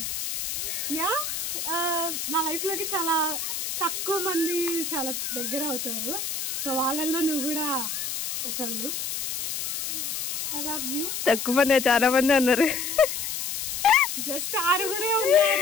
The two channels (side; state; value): left; noise; hiss, 3 dB below the sound